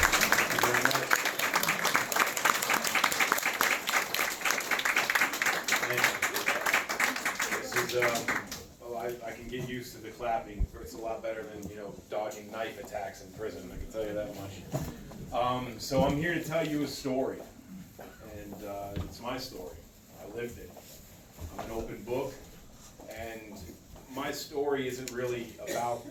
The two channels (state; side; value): identical; both; correlation 1.00